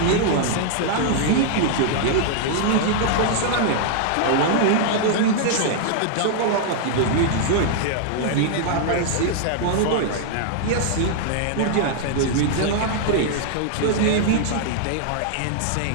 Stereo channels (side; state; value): both; different; correlation -0.01